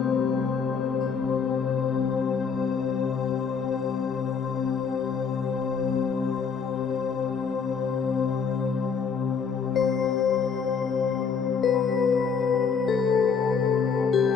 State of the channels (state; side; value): quieter; right; 6.0 dB